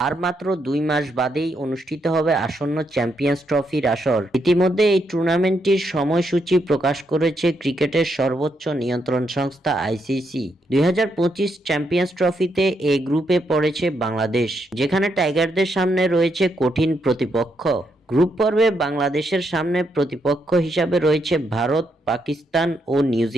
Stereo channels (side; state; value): both; normal; correlation 0.79